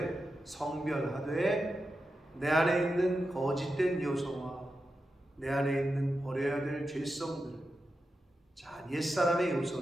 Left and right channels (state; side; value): normal; both; correlation 0.90